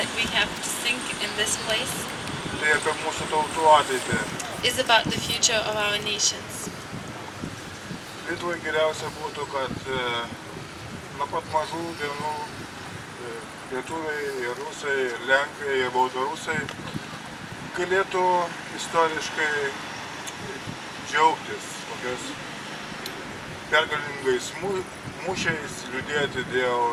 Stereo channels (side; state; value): both; identical; correlation 1.00